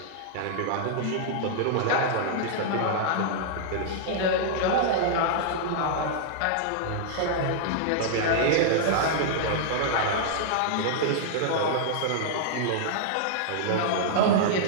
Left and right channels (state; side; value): different; both; correlation -0.01